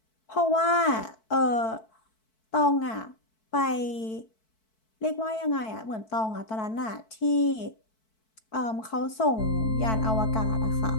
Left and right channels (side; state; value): right; late; 4.6 ms